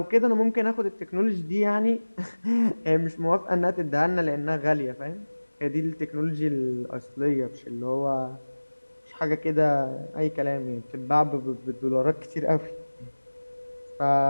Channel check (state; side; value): inverted; both; correlation -1.00